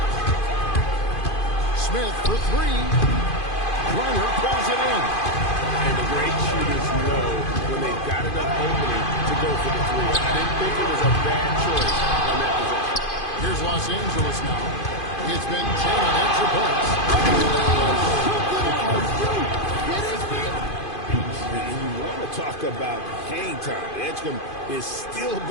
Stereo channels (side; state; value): right; late; 2.5 ms